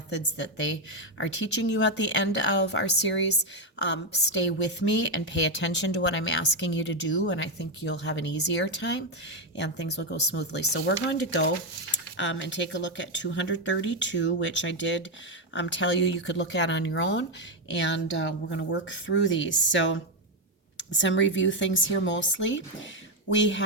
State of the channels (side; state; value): both; normal; correlation 0.05